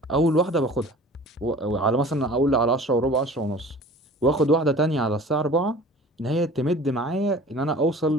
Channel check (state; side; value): normal; both; correlation 0.44